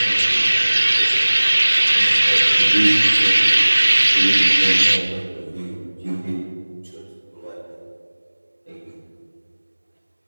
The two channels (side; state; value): both; inverted; correlation -1.00